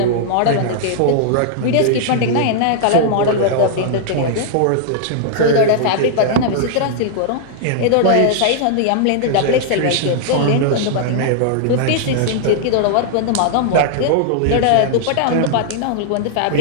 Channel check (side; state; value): both; different; correlation -0.01